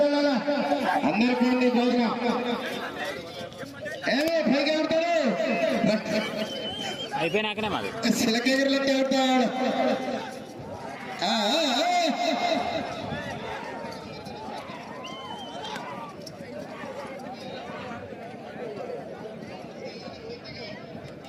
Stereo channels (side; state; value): both; identical; correlation 1.00